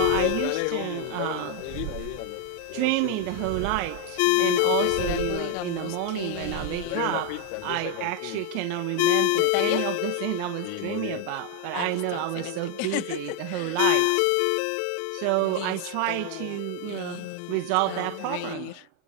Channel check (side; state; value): both; different; correlation 0.01